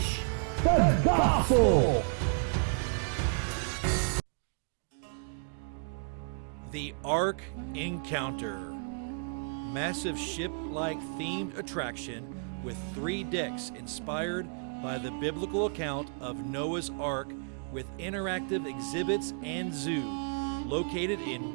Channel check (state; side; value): silent; left; 56 dB below the other